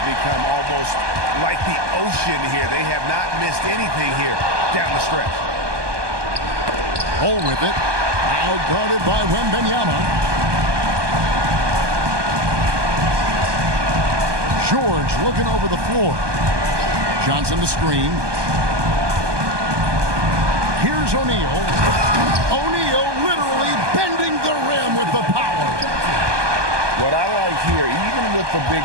become almost like the ocean here. They have not missed anything here down the stretch. Hole with it. Now guarded by Wembanyama. George looking over the floor. Johnson the screen. Here's O'Neal. O'Neal literally bending the rim with the power. What I like here, even with the big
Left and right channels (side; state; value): left; late; 1.2 ms